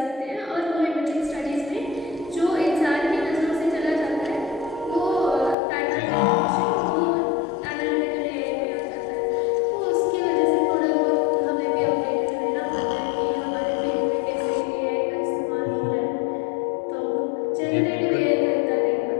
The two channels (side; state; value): right; drops out; at 5.6 s